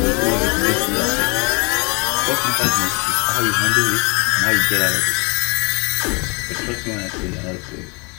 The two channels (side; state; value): right; quieter; 31.0 dB